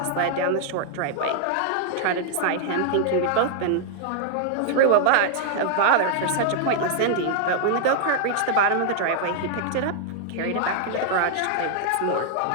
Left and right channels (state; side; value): different; both; correlation -0.01